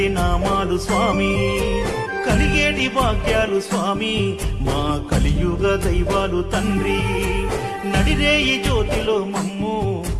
నామాలు స్వామి, కలిగేటి భాగ్యాలు స్వామి మా కలియుగ దైవాలు తండ్రి, నడిరేయి జ్యోతిలో మమ్ము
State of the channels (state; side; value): identical; both; correlation 1.00